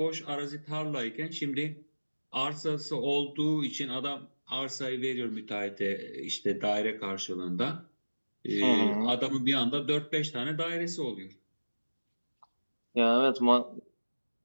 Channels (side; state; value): both; inverted; correlation -1.00